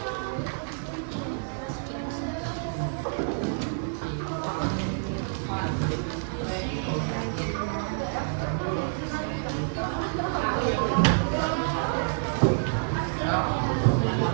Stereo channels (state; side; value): silent; left; 59 dB below the other